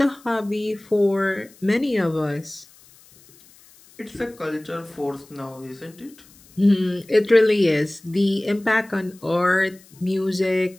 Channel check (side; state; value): left; noise; hiss, 26 dB below the sound